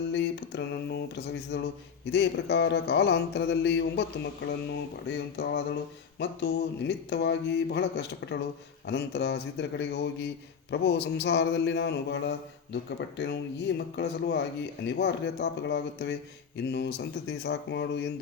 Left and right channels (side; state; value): right; quieter; 6.6 dB